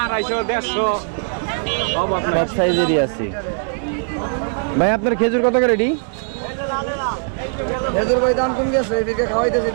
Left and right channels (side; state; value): left; silent; digital silence